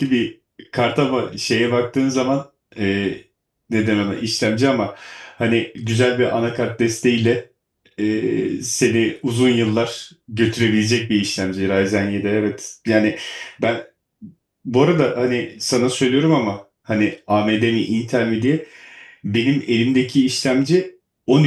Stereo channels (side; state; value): both; identical; correlation 1.00